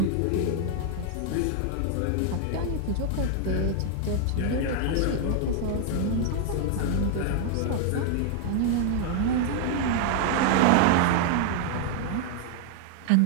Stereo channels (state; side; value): different; both; correlation 0.00